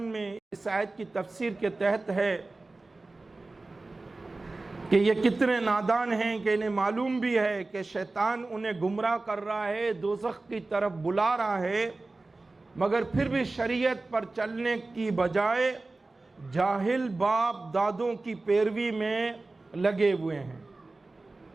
میں اس آیت کی تفسیر کے تحت ہے کہ یہ کتنے نادان ہیں کہ انہیں معلوم بھی ہے کہ شیطان انہیں گمراہ کر رہا ہے، دوزخ کی طرف بلا رہا ہے، مگر پھر بھی شریعت پر چلنے کی بجائے جاہل باپ دادوں کی پیروی میں لگے ہوئے ہیں۔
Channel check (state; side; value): quieter; left; 3.3 dB